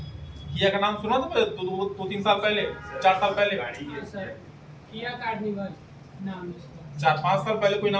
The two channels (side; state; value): both; identical; correlation 1.00